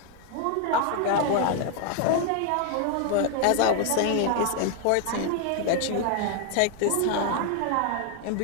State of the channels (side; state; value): both; different; correlation 0.00